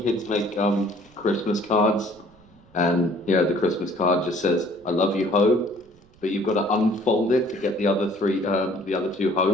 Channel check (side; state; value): right; noise; rumble, 28 dB below the sound